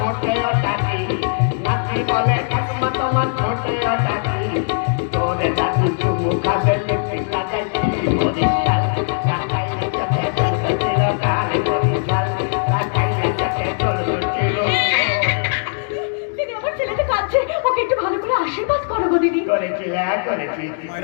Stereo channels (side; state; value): right; silent; digital silence